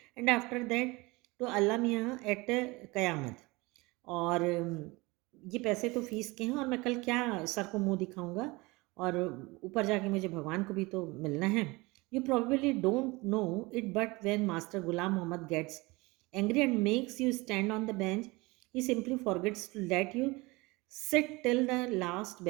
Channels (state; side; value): quieter; left; 23.5 dB